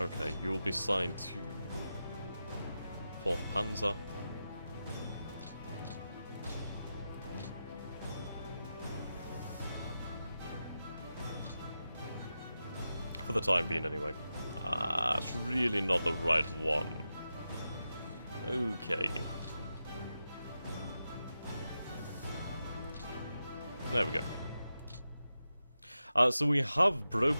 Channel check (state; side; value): inverted; both; correlation -0.90